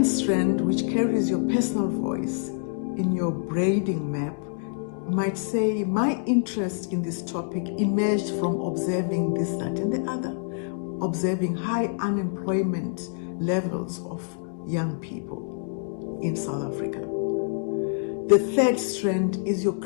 strand, which carries your personal voice in your braiding map, might say, my interest in this topic emerged from observing this, that, and the other, observing high unemployment levels of young people in South Africa. The third strand is your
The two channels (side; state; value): right; silent; 61 dB below the other